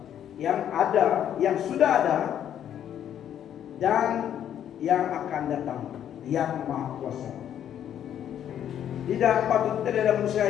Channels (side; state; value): right; quieter; 10.0 dB